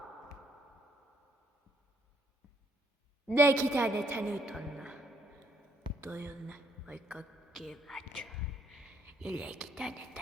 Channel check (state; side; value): normal; both; correlation 0.69